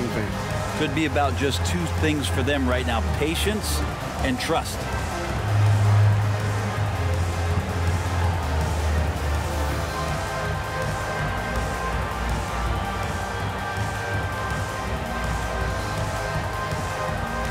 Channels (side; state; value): both; identical; correlation 1.00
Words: things. Could be about just 2 things for them right now: patience and trust.